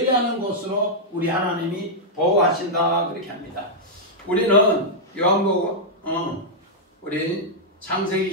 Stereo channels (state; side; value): normal; both; correlation -0.07